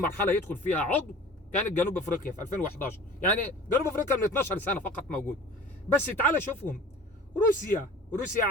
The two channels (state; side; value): normal; both; correlation 0.43